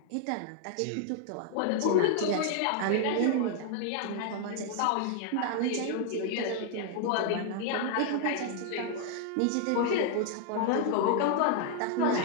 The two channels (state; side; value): different; both; correlation 0.00